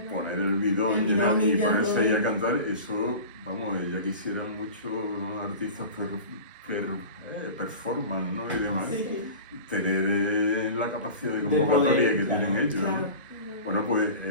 poner el bidón El bidón y y ya ponerse todo. ahí a cantar, eso, vamos, ya quisieran muchos artistas performance, ¿no? Y demás, Sí, tener la capacidad de poder, convocatoria que claro. tienen ellos, ¿no? claro. Bueno, pues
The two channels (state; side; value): inverted; both; correlation -0.35